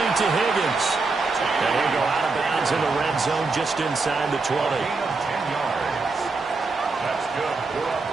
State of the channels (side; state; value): left; quieter; 3.9 dB